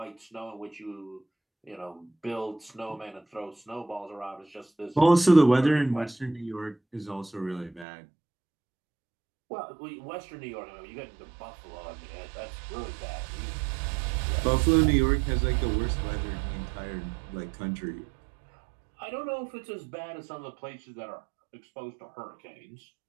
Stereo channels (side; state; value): left; drops out; at 7.9 s